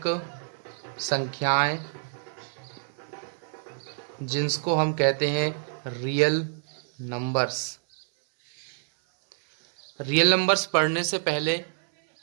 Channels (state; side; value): silent; left; 60 dB below the other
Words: संख्याएं जिनको हम कहते हैं रियल नंबर्स। रियल नंबर्स पढ़ने से पहले